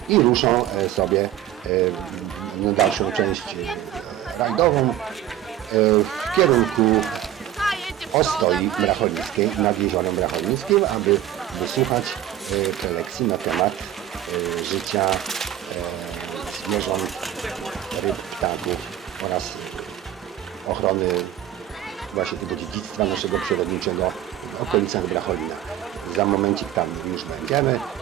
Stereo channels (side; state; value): left; quieter; 11.7 dB